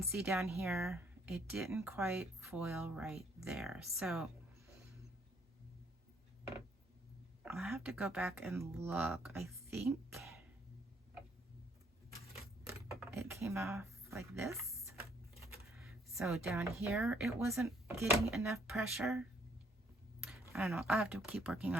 see down here, it didn't quite foil right there. So I'll have to go back and look. I think it came off like this. So down here, it wasn't getting enough pressure. I don't know, I'll have to keep working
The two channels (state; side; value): normal; both; correlation 0.66